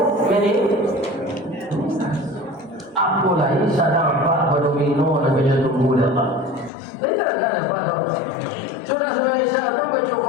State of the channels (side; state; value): right; drops out; at 6.7 s